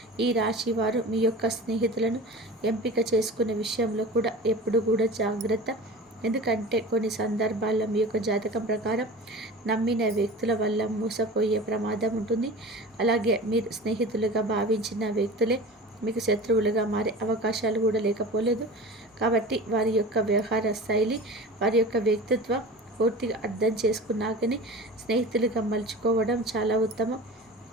ఈ రాశి వారు మీ యొక్క స్నేహితులను ఎంపిక చేసుకునే విషయంలో కూడా ఎప్పుడు కూడా జాగ్రత్త. ఎందుకంటే కొన్ని సందర్భాల్లో మీ యొక్క జాతకం ప్రకారం నమ్మిన వ్యక్తుల వల్ల మోసపోయే ప్రమాదం ఉంటుంది. అలాగే మీరు స్నేహితులుగా భావించిన వ్యక్తులే మీకు శత్రువులుగా మారే అవకాశాలు కూడా లేకపోలేదు. కాబట్టి వారి యొక్క వ్యవహార శైలి, వారి యొక్క వ్యక్తిత్వం పూర్తిగా అర్థం చేసుకున్నాకనే స్నేహితులుగా మలుచుకోవడం చాలా ఉత్తమం.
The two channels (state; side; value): normal; both; correlation 0.35